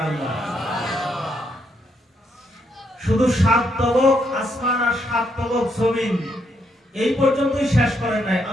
শুধু 7 তবক আসমান আর 7 তবক জমিন, এই পর্যন্তই শেষ করেন নাই।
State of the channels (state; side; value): normal; both; correlation 0.76